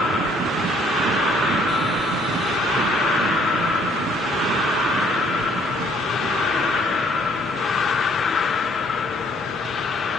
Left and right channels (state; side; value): normal; both; correlation 0.63